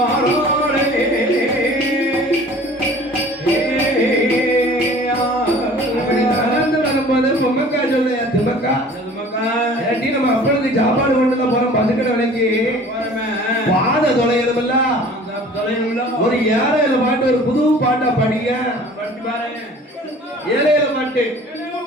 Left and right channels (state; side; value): normal; both; correlation 0.47